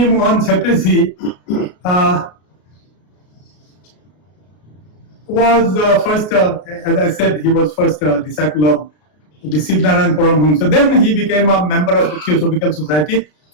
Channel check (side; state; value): right; late; 33 ms